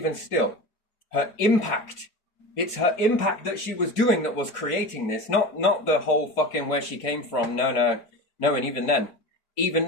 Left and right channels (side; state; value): right; late; 4.6 ms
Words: still, her impact. It's her impact that she was doing that was creating this, not the whole fucking where she came from. No. And even